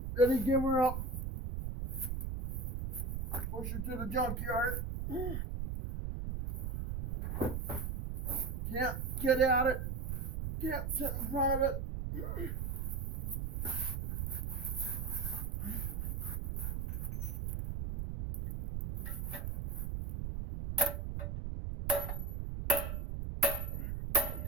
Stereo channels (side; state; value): right; noise; rumble, 2 dB below the sound